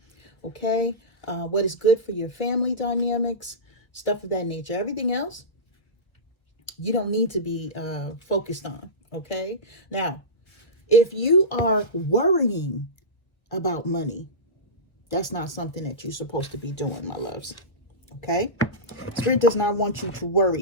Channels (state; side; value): late; right; 1.2 ms